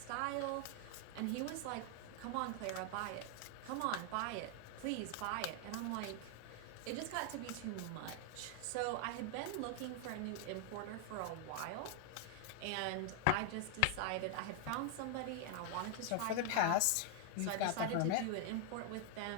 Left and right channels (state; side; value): different; both; correlation 0.00